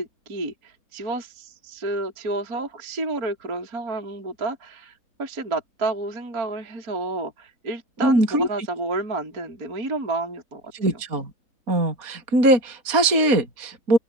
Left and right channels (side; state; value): left; late; 4.2 ms